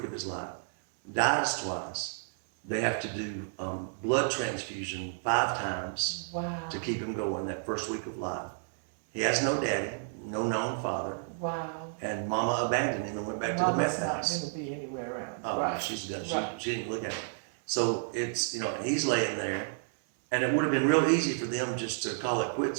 of his life, dies twice. They have to do blood transfusion 5 times to keep him going that first week of life. He has no daddy, no known father. Wow. And Mama abandoned him and went back to the meth house. Mama's not going to be anywhere around. Oh, right. She's good. She didn't look at him. So it's, he's laying there, and it would have been real easy for them just to call it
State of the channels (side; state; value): left; silent; 57 dB below the other